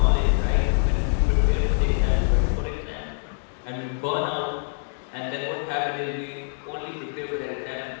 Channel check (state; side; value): silent; right; digital silence